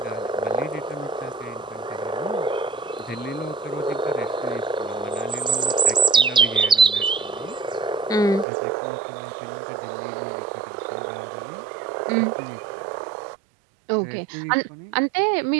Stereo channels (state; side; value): drops out; left; at 8.5 s